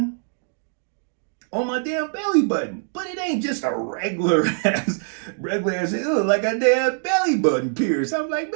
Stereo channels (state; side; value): silent; left; digital silence